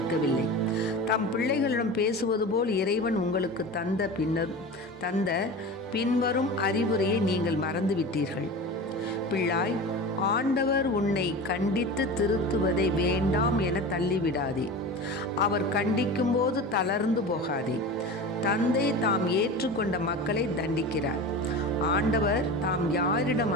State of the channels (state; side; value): normal; both; correlation 0.31